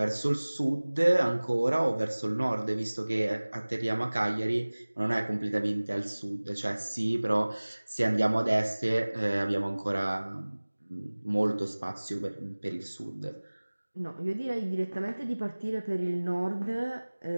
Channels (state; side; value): inverted; both; correlation -1.00